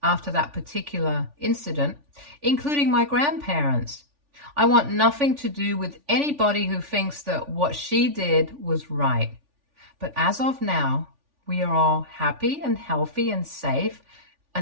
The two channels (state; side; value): late; left; 3.4 ms